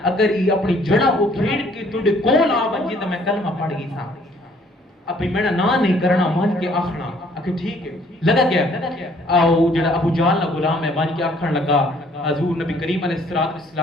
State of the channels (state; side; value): normal; both; correlation 0.61